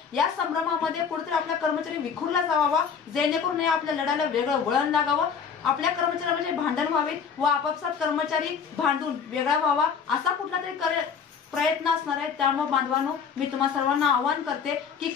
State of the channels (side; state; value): right; quieter; 6.5 dB